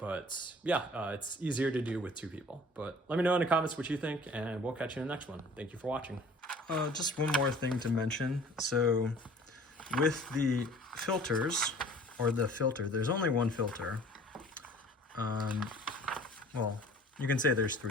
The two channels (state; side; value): normal; both; correlation 0.49